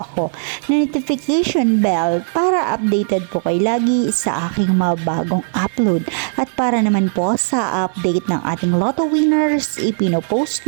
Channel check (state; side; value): silent; left; 60 dB below the other